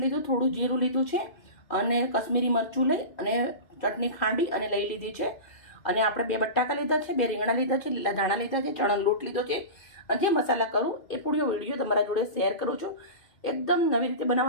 લીધું, થોડું જીરું લીધું છે અને કશ્મીરી મરચું લઈ અને ચટણી ખાંડી અને લઈ લીધી છે. અને આપણે 2 બટાકા લીધા છે, 2 રીંગણા લીધા છે, લીલા ધાણા લીધા છે, ચણાનો લોટ લીધો છે. અને જે મસાલા કરું એ પૂરો વિડીયો તમારા જોડે શેર કરું છું. એકદમ નવી રીતે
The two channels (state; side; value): late; right; 2.4 ms